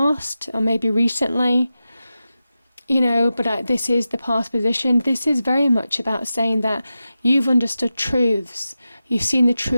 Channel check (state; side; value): inverted; both; correlation -0.92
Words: or maybe recently, this is the past position. This is very much about saying that you've understood truths. You've seen the